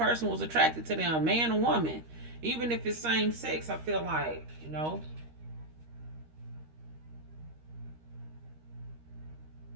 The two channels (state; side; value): late; left; 13 ms